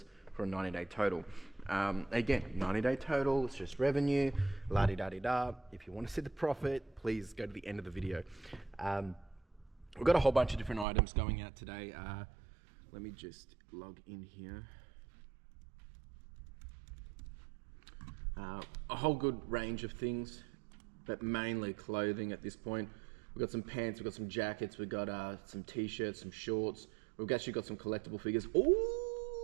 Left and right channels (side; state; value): left; drops out; at 10.9 s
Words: for a 90-day total. Again, 90-day total, it's just revenue, la-di-da-di-da. If you want to see the profit, please go to the end of the video. We've got a whole bunch of different items going out today. Let me just log in here. A whole good range of things, but mainly clothing at this point. We've got some pants, we've got some jackets, we've got some t-shirts, some shorts. We've actually got some collectible figures.